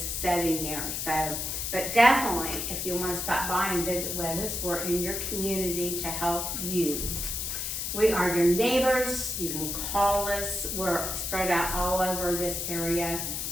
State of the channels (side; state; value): left; noise; hiss, 3 dB below the sound